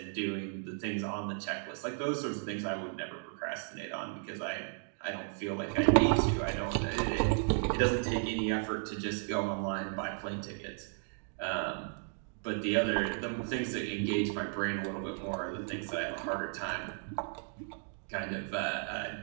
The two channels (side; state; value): left; silent; 55 dB below the other